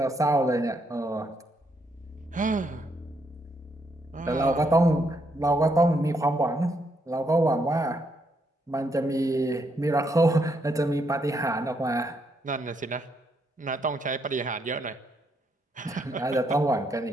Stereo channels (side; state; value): both; normal; correlation 0.76